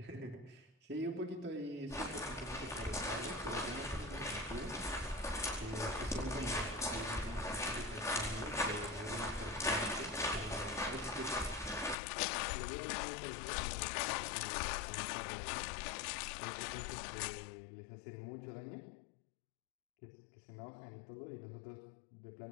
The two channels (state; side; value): drops out; right; at 12.0 s